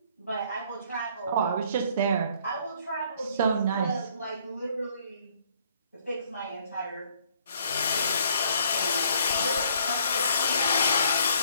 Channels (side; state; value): both; inverted; correlation -0.63